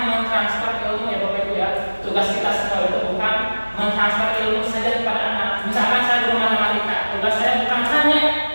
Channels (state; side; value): inverted; both; correlation -1.00